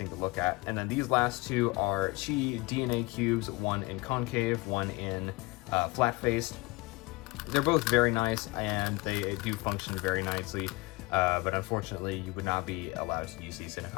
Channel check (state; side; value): quieter; right; 23.4 dB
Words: to look at. And then these last two are Chi DNA cubes, one in concave, one in flat-faced. They're both very nice, and they do function very nicely. But unfortunately, you would not be allowed to use these in a